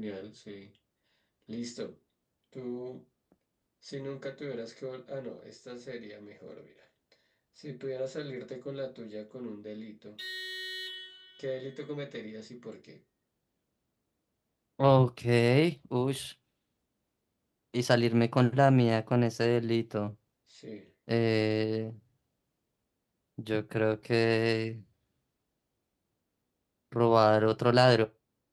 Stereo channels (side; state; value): both; identical; correlation 1.00